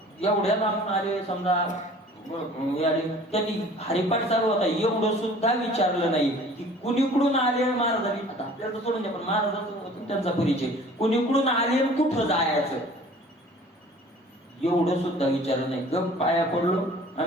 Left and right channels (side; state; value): both; normal; correlation 0.48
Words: एवढ्या लांबून आले समजा, त्यांनी हरिपाठ चालू होता, एवढं सुद्धा विचारलं नाही की कुणीकडून आले महाराजांनी. आता आपल्याला सोडून द्या, पण महाराजांचा त्यांचा परिचय, कुणीकडून आले कुठं जायचं एवढं सुद्धा विचारलं नाही. गप पाया पडलो